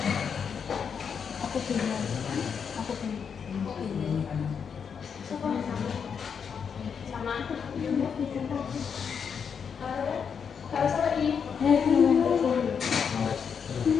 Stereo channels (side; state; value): right; quieter; 6.8 dB